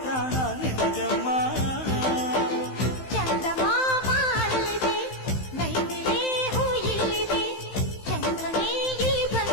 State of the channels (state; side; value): late; right; 15 ms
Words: ಪ್ರಾಣ ನಿನಗಮ್ಮ. ಚಂದಮಾಮ ಅಲ್ಲಿದೆ, ನೈದಿಲೆ ಹೂ ಇಲ್ಲಿದೆ, ಚಂದ್ರನೇ ಇಲ್ಲಿ